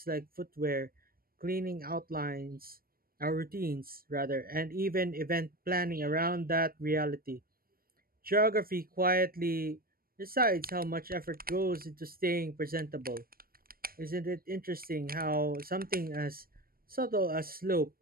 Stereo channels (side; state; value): left; late; 0.43 ms